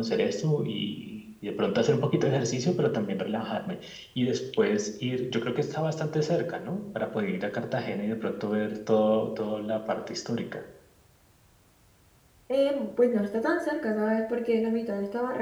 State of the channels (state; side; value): identical; both; correlation 1.00